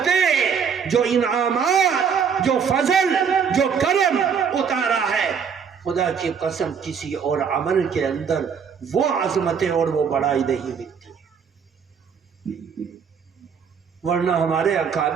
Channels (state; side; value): quieter; left; 6.8 dB